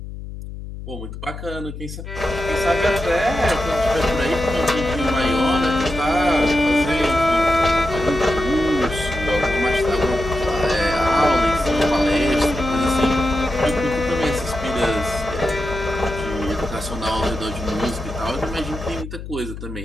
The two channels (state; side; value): noise; left; hum, 10 dB below the sound